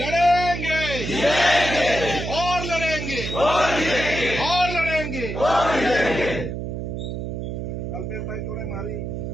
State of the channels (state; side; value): noise; right; hum, 5 dB below the sound